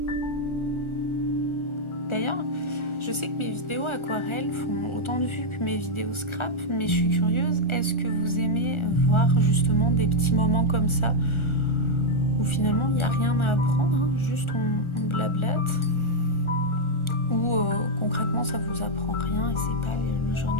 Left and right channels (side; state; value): right; late; 1.4 ms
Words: D'ailleurs, je sais que mes vidéos aquarelles font autant de vues que mes vidéos scrap, mais je suis curieuse, est-ce que vous aimez voir justement des petits moments comme ça où finalement il n'y a rien à apprendre, hein, juste on blablate, ou concrètement ça vous apprend rien et c'est pas le